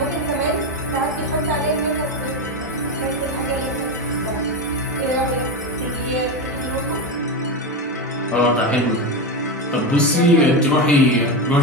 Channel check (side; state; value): both; normal; correlation 0.15